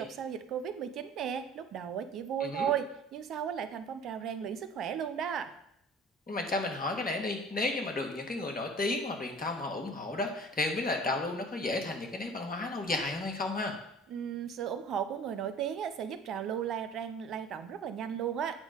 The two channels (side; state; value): both; normal; correlation 0.45